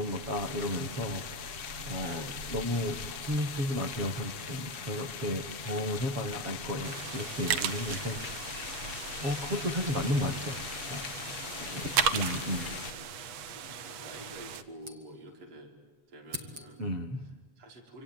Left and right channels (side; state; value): left; late; 8.2 ms